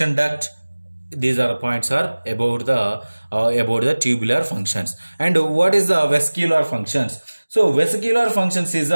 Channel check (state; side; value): inverted; both; correlation -1.00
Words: duct. These are points are about the tubular functions. And what is the vesicular functions? So vesicular functions is